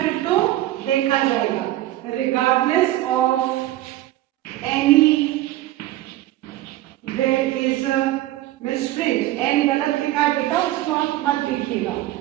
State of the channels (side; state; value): left; quieter; 15.3 dB